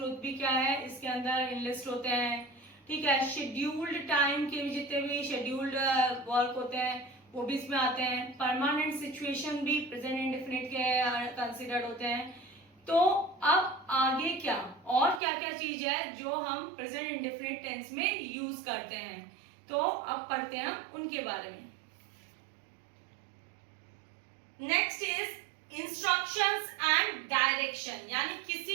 भी क्या है इसके अंदर इनलिस्ट होते हैं. ठीक है. शेड्यूल्ड टाइम के भी जितने भी शेड्यूल्ड वर्क होते हैं वो भी इसमें आते हैं. परमानेंट सिचुएशन भी प्रेजेंट इंडेफिनिट के कंसिडर्ड होते हैं. तो अब आगे क्या और क्या क्या चीज है जो हम प्रेजेंट इंडेफिनिट टेंस में यूज करते हैं, तो अब पढ़ते हैं हम उनके बारे में. Next is instructions and direction. यानी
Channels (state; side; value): drops out; left; at 15.2 s